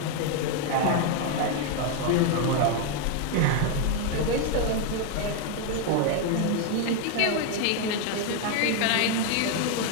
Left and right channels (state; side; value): different; both; correlation 0.01